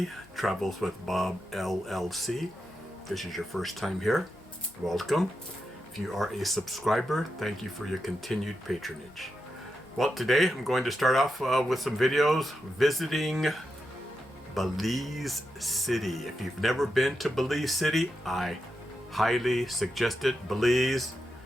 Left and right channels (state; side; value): normal; both; correlation 0.87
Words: Travels with Bob LLC. If this is your first time here, welcome. If you are a subscriber, thank you for your continued patronage. Well, today I'm going to start off with some videos visiting Belize City. If you've never been to Belize City, I highly suggest it. Belize,